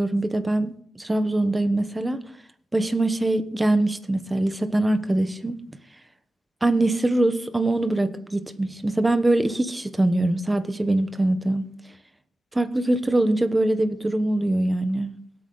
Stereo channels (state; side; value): normal; both; correlation 0.95